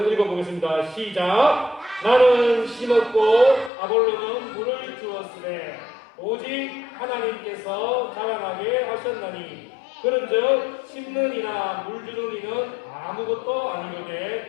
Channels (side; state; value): right; drops out; at 3.7 s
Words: 읽어보겠습니다. 시작. 나는 심었고 아볼로는 물을 주었으되 오직 하나님께서 자라나게 하셨나니 그런즉 심는 이나 물 주는 이는 아무것도